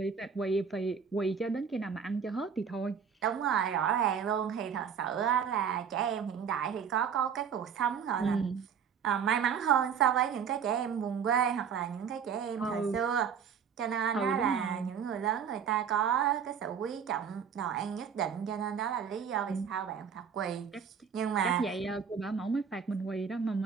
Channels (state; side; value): quieter; left; 7.1 dB